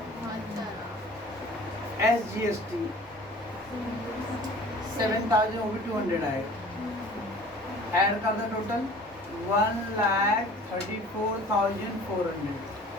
एस जीएसटी 7,000, वो भी 200 आएगा। ऐड कर दो, टोटल 1,34,400।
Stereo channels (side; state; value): both; normal; correlation 0.46